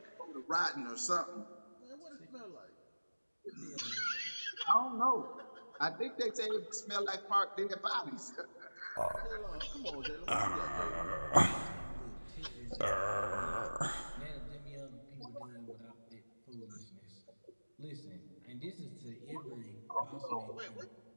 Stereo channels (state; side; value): inverted; both; correlation -1.00